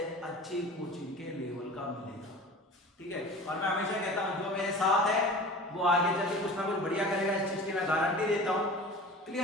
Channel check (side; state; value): both; normal; correlation 0.38